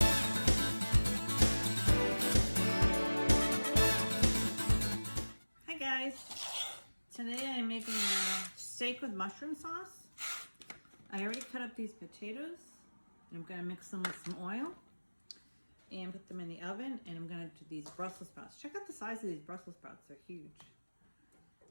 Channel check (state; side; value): inverted; both; correlation -1.00